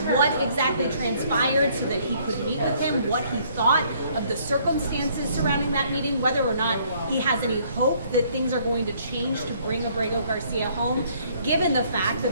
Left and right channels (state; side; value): inverted; both; correlation -0.63